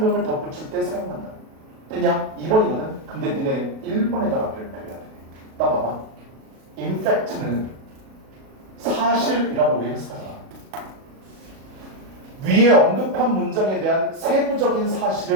덧붙일 때 사용한다. 그냥 2번이거든. 근데 니네 1번에다가 별표해야 돼. 나 봐봐. 임팩트는 사실이라고 우리 해석하잖아. 위에 언급한 문장에 대한 세부적인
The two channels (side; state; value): left; late; 37 ms